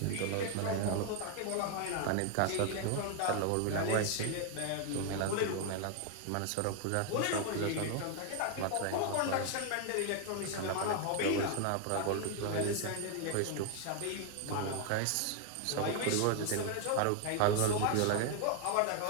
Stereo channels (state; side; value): different; both; correlation 0.01